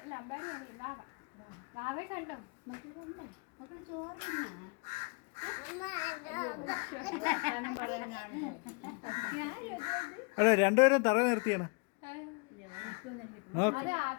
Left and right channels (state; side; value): quieter; right; 32.7 dB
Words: അല്ല അമ്പാടി വാവ. വാവെ കണ്ടോ? അതെ രണ്ടുപേരും തറ നിർത്തിയാണ്.